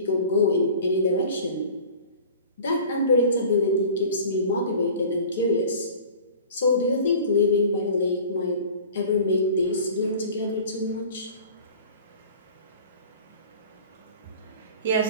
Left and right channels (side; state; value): both; inverted; correlation -0.42